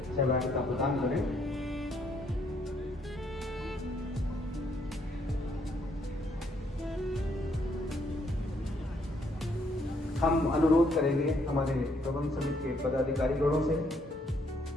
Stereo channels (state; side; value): normal; both; correlation 0.70